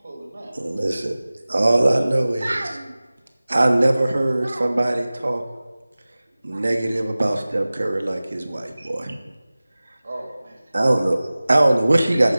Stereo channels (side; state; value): both; inverted; correlation -0.98